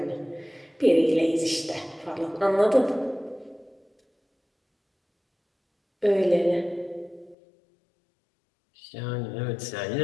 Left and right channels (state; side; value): drops out; right; at 7.4 s